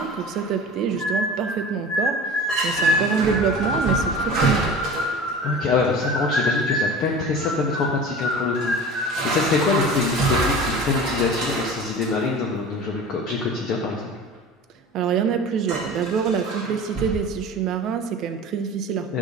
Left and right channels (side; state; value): both; normal; correlation 0.37